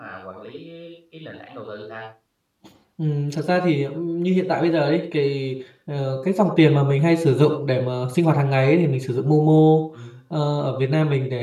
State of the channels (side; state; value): both; identical; correlation 1.00